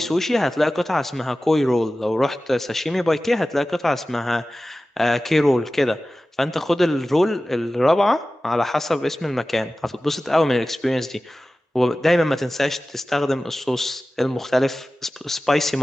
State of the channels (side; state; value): both; normal; correlation 0.96